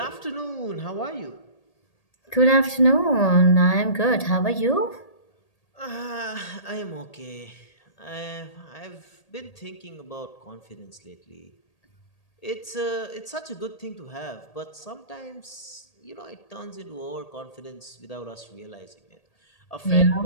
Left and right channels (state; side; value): late; right; 1.8 ms